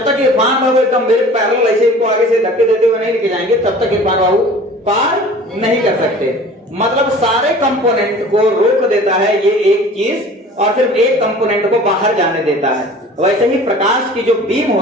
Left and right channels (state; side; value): normal; both; correlation 0.44